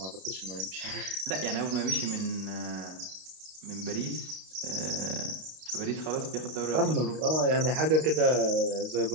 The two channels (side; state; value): left; late; 32 ms